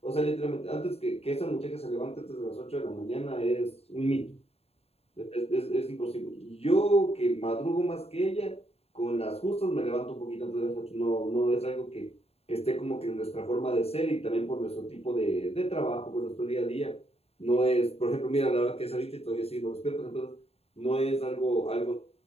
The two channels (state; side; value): late; right; 0.29 ms